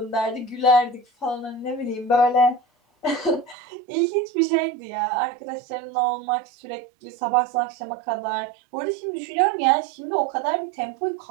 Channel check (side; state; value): left; drops out; at 3.6 s